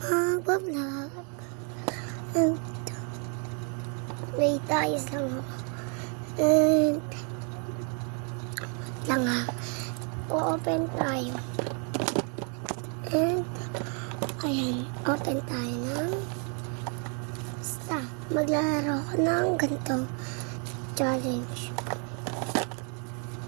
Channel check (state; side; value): quieter; left; 39.6 dB